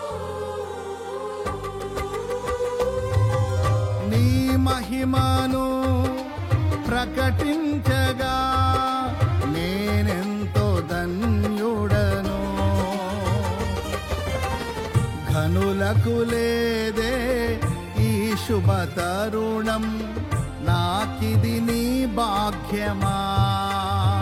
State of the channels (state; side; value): identical; both; correlation 1.00